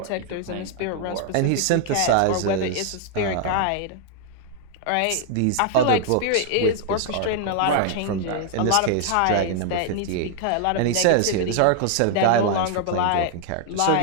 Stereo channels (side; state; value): both; different; correlation 0.00